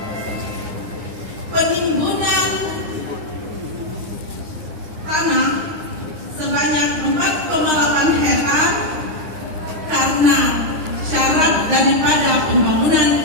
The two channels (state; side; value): late; left; 9.7 ms